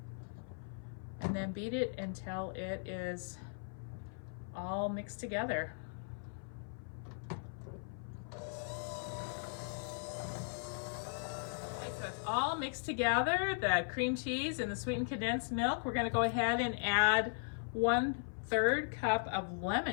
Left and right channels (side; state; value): right; silent; 52 dB below the other